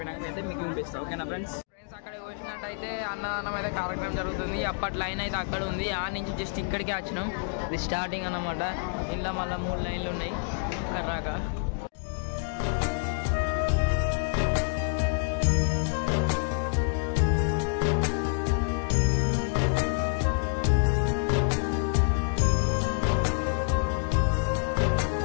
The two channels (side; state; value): right; silent; 59 dB below the other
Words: అయితే మీకు చూపిస్తాం, ఓకేనా ఫ్రెండ్స్? అక్కడ చూసినట్టయితే అన్నదానం అయితే కార్యక్రమం జరుగుతుంది. అప్పటి లైన్ అయితే అక్కడ ఉంది, ఆ నుంచి జస్ట్ ఇక్కడికే వచ్చినాం. ఇది స్టార్టింగ్ అన్నమాట. ఇంట్లో మళ్ళీ 3 లైన్లు ఉన్నాయి కర్రాక.